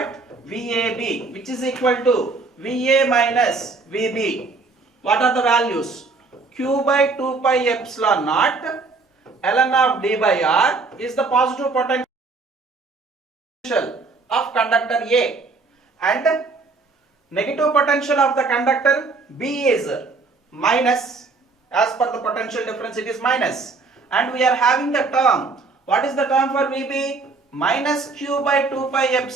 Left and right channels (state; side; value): quieter; left; 4.0 dB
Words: VAB, which is equal to VA minus VB. What are the values? Q by 2 pi epsilon naught ln of d by r is the positive potential of conductor A, and negative potential of the conductor B is minus. As per the potential difference, it is minus, and we are having the term. What is the term for VB? Minus q by 2 pi